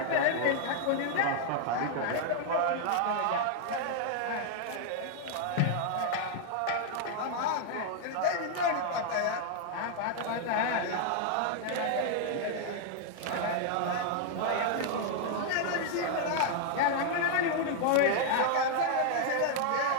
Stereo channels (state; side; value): different; both; correlation 0.00